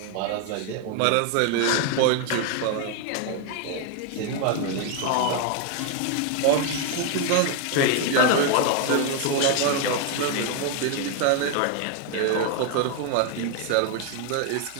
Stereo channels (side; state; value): both; different; correlation 0.01